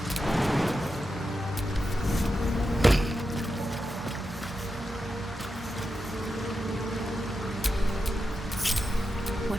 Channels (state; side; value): normal; both; correlation 0.89